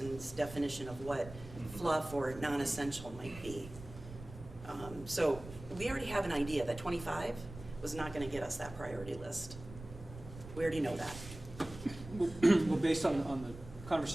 definition of what fluff or non-essential might be. So we already have an idea that 25 was not going to get us that priority list. We already know that. Well, based on the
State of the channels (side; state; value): right; noise; rumble, 14 dB below the sound